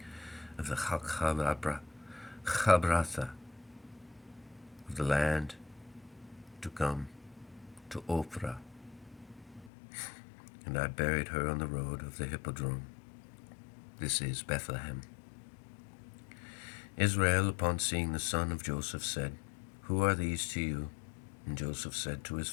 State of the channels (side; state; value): right; drops out; at 9.7 s